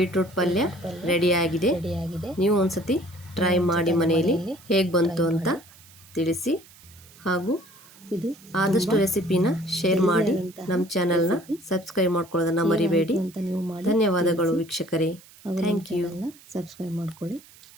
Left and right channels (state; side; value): noise; right; hiss, 23 dB below the sound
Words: ಪಲ್ಯ ರೆಡಿಯಾಗಿದೆ. ನೀವು ಒಂದ್ಸತಿ ಟ್ರೈ ಮಾಡಿ ಮನೆಯಲ್ಲಿ ಹೇಗೆ ಬಂತು ಅಂತ ತಿಳಿಸಿ. ಹಾಗೂ ಇದು ಆದಷ್ಟು ರೆಸಿಪಿನ ಶೇರ್ ಮಾಡಿ. ನಮ್ಮ ಚಾನಲ್ನ ಸಬ್ಸ್ಕ್ರೈಬ್ ಮಾಡ್ಕೊಳ್ಳೋದನ್ನು ಮರಿಬೇಡಿ. ಧನ್ಯವಾದಗಳು ವೀಕ್ಷಕರೇ. Thank you. ಸಬ್ಸ್ಕ್ರೈಬ್ ಮಾಡ್ಕೊಳ್ಳಿ.